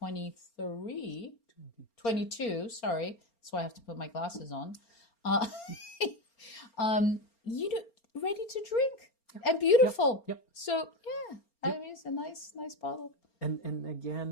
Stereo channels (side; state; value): right; late; 4.3 ms